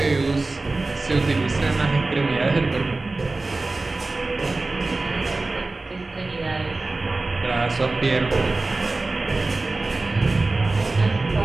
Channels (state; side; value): quieter; left; 3.3 dB